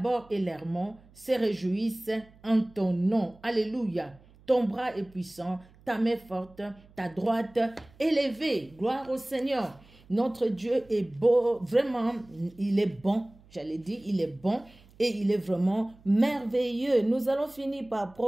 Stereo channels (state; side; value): noise; right; hum, 26 dB below the sound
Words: et l'Hermon se réjouissent en ton nom. Alléluia. Ton bras est puissant, ta main forte, ta droite élevée. Gloire au Seigneur. Notre Dieu est beau, vraiment, il est bon. J'allais dire, il est bon et il est vraiment merveilleux. Nous allons finir par